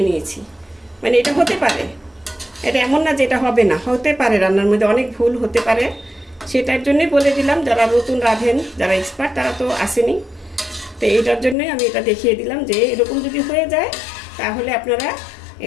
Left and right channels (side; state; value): right; drops out; at 11.6 s